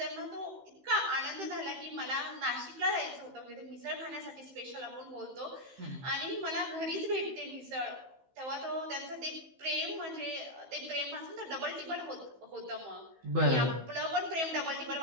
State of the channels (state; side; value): late; left; 15 ms